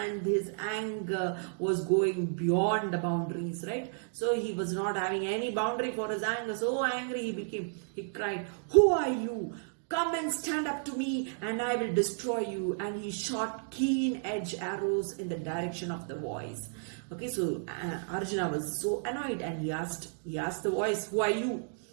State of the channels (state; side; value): silent; left; digital silence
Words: his anger was going beyond the boundaries, right? So he was not having any boundary for his anger. So angry he cried, who are you? Come and stand up to me and I will destroy you. And he shot keen edge arrows in the direction of the voice. Okay, so Arjuna was so annoyed, and he asked the voice, who are you?